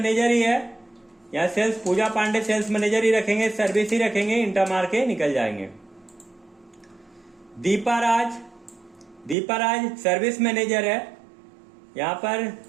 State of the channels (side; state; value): left; drops out; at 9.3 s